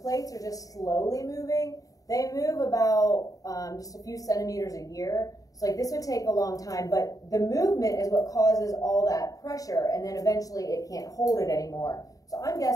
plates are just slowly moving, they move about just a few centimeters a year. So like this would take a long time, but the movement is what causes all that pressure, and then eventually it can't hold it anymore. So I'm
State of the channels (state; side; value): late; right; 0.17 ms